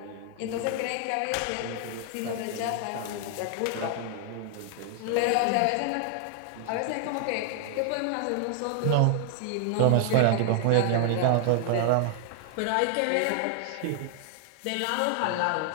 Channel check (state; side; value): different; both; correlation 0.00